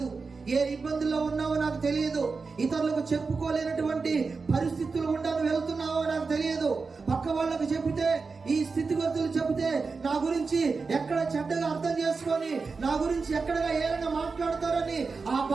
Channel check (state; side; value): quieter; left; 4.5 dB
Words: ఏ ఇబ్బందుల్లో ఉన్నావో నాకు తెలియదు, ఇతరులకు చెప్పుకోలేనటువంటి పరిస్థితులు ఉండాలని వెళ్తున్నావో నాకు తెలియదు. పక్క వాళ్ళకు చెబితే, ఈ స్థితిగతులు చెబితే నా గురించి ఎక్కడ చెడ్డగా అర్థం చేసుకొని, నా గురించి ఎక్కడగా ఏమైనా మాట్లాడతారని ఆ